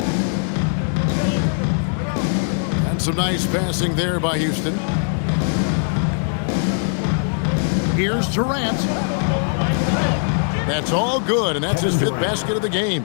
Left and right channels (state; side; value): silent; right; 65 dB below the other